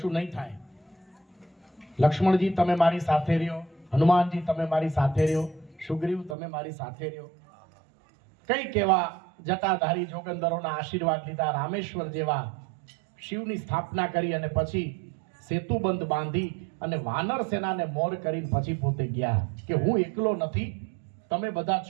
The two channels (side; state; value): left; drops out; at 6.4 s